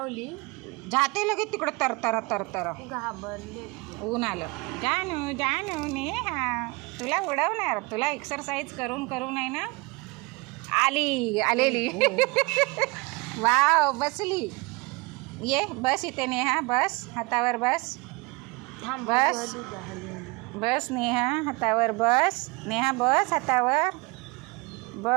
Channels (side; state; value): left; quieter; 26.3 dB